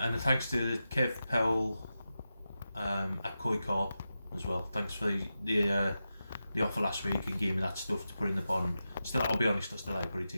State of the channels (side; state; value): both; inverted; correlation -0.91